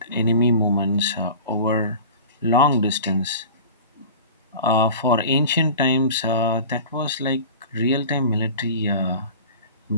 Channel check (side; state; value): both; inverted; correlation -0.38